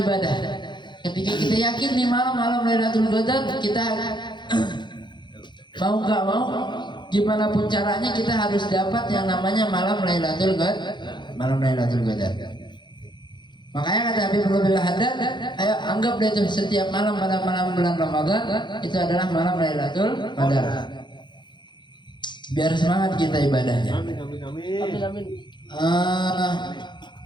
Ketika kita yakin nih malam Lailatul Qadar, kita mau nggak mau, gimana pun caranya kita harus dapat yang namanya malam Lailatul Qadar. Makanya kata Habib Abdullah Haddad, ayo anggap deh itu setiap malam pada malam bulan Ramadan itu adalah malam Lailatul Qadar. Biar semangat kita ibadahnya. Amin.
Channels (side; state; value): right; late; 0.22 ms